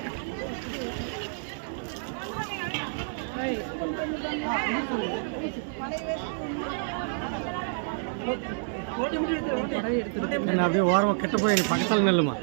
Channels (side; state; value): left; silent; digital silence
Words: என்ன அப்படியே ஓரமாக கிட்ட போய் நீ பக்கத்தால் நெல்லுமா,